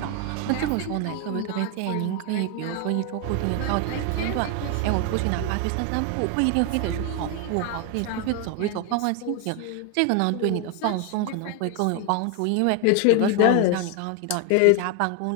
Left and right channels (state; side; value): different; both; correlation 0.01